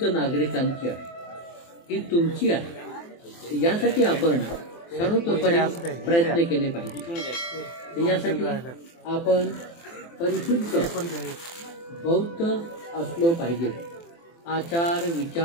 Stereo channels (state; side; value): late; right; 24 ms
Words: नागरिकांची आहे, ही तुमची आहे. यासाठी आपण सर्वतोपरी प्रयत्न केले पाहिजे. यासाठी आपण परिशुद्ध बौद्ध असलो पाहिजे. आचार